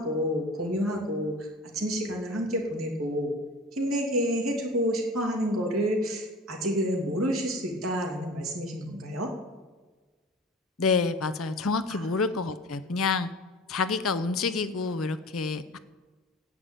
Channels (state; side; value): normal; both; correlation 0.39